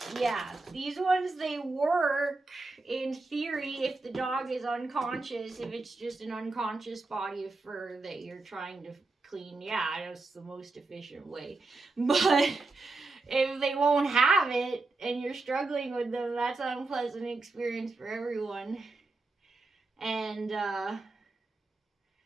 these ones, they work in theory if the dog is unconscious, if it's just an unconscious body of fur that you're trying to clean. Yeah, that's the most efficient way. But if they won't have it and you're struggling with them, that's an unpleasant experience for everyone. And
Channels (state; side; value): quieter; left; 3.4 dB